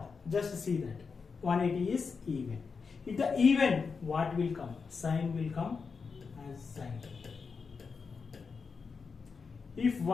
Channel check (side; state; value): right; quieter; 5.2 dB